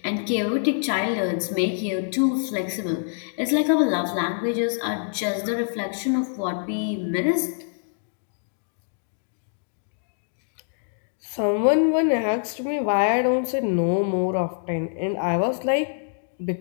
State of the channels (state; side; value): silent; right; digital silence